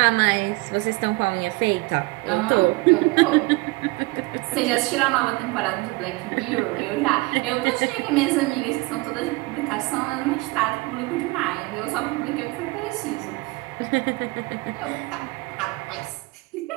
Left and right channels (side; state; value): left; quieter; 24.1 dB